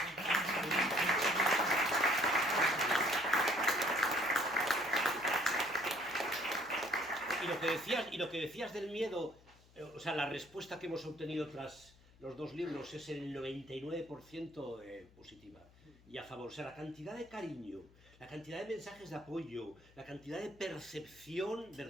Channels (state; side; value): noise; left; hum, 26 dB below the sound